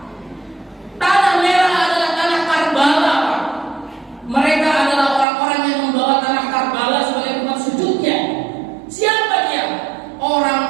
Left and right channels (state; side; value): drops out; left; at 5.2 s